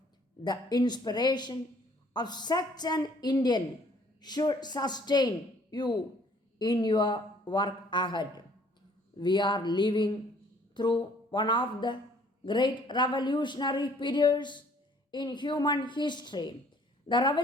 The inspiration of such an Indian should sustain you in your work ahead. We are living through one of the great revolutionary periods in human history. The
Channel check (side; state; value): both; normal; correlation 0.59